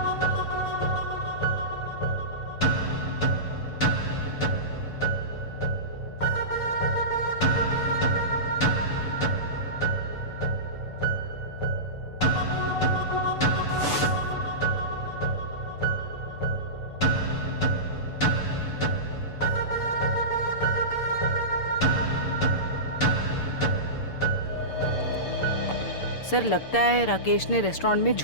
सर लगता है राकेश ने रेस्टोरेंट में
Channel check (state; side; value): late; right; 6.9 ms